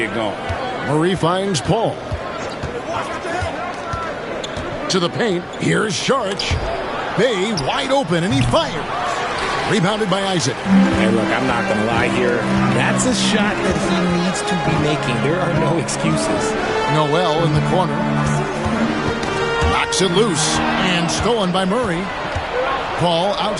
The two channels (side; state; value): both; identical; correlation 1.00